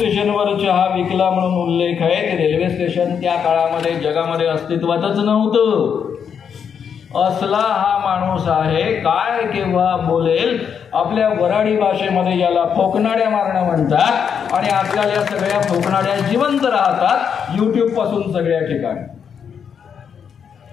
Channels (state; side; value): quieter; right; 7.3 dB